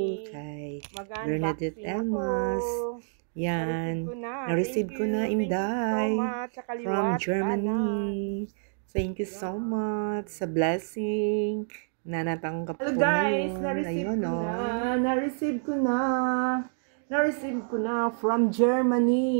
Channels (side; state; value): left; silent; digital silence